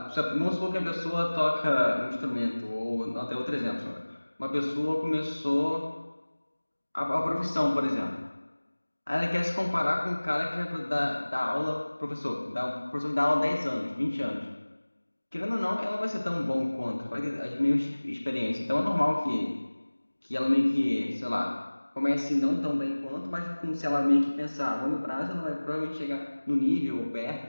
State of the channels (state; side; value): inverted; both; correlation -1.00